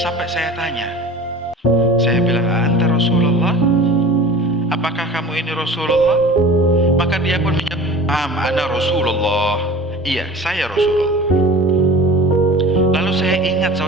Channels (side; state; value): both; normal; correlation 0.40